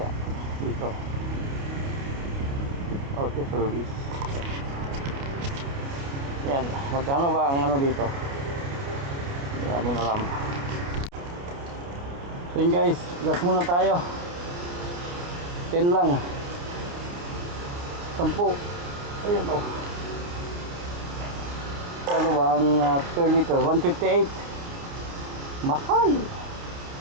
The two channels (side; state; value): left; late; 29 ms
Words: dito. Auto service. Yan, magkano ba ang ano dito? Hindi namin alam. So yun guys, gas muna tayo. 10 lang. 10. Ayan o. Ano ba ang per liter? 158. Mahal.